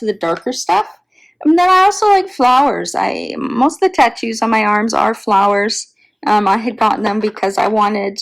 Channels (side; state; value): both; identical; correlation 1.00